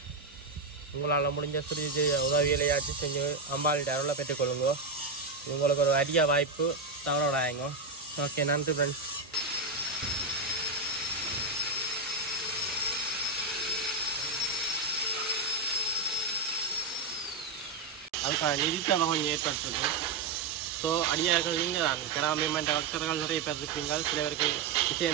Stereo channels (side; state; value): left; quieter; 4.0 dB